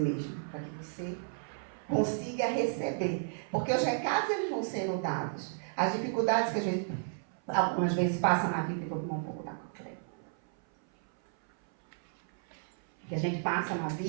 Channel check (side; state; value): left; silent; 56 dB below the other